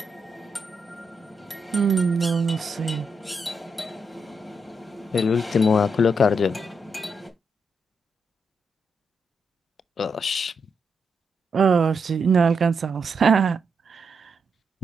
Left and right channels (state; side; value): normal; both; correlation 0.82